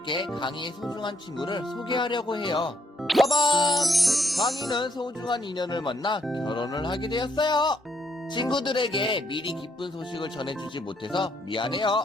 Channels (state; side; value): normal; both; correlation 0.72